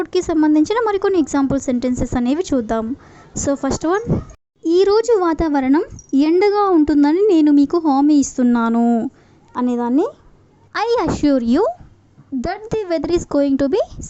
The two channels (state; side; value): identical; both; correlation 1.00